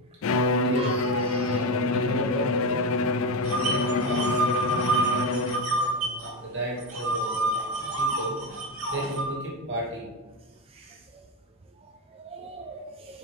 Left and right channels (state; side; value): normal; both; correlation 0.14